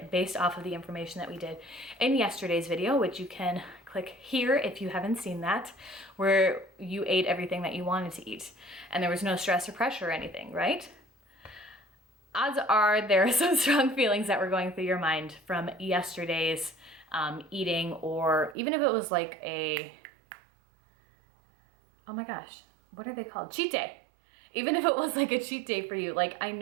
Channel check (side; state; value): left; drops out; at 18.6 s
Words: based off of the information that we did in yesterday's video, which you can click here if you haven't seen that, where you ate everything that you wanted to eat and there was no stress or pressure or anything, right? Odds are there are some strong feelings that were going through your mind from yesterday's eating, or even if it was like oh my gosh, what are they called? Cheat day. Even if it was like a cheat day for you. Like, I